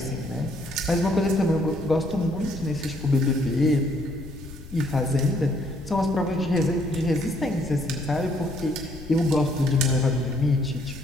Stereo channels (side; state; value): left; noise; rumble, 15 dB below the sound